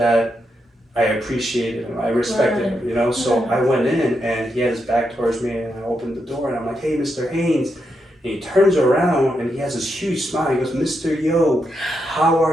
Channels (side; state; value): both; normal; correlation 0.83